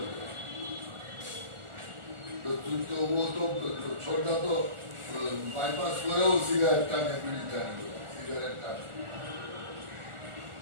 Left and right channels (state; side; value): late; left; 1.4 ms